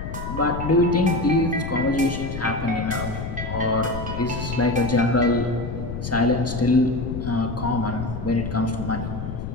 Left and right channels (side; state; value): left; noise; rumble, 7 dB below the sound